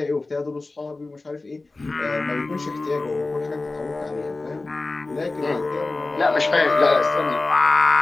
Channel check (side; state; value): right; quieter; 3.3 dB